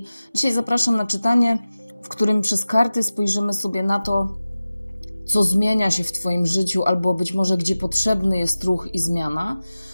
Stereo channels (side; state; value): both; inverted; correlation -0.96